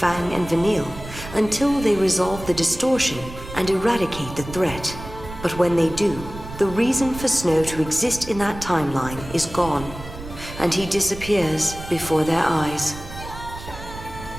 and Vanille until they resolve the distortion and eradicate the threat. But when they do, the reason for Snow to exist in that timeline is gone, and he disappears before their eyes.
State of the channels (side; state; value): right; noise; rumble, 13 dB below the sound